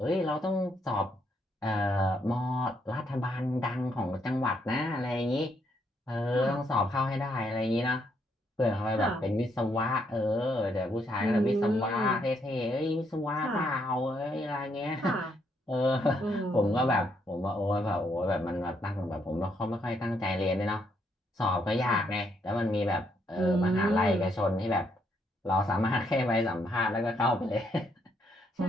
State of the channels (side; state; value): both; normal; correlation 0.74